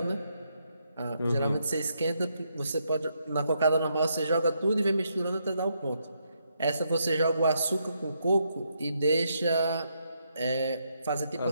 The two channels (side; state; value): both; inverted; correlation -0.78